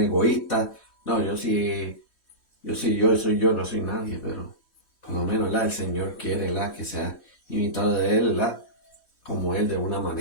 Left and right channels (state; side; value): late; right; 3.1 ms